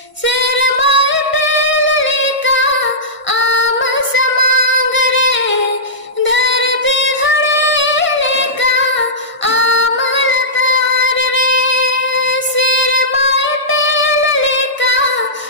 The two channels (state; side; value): late; right; 1.5 ms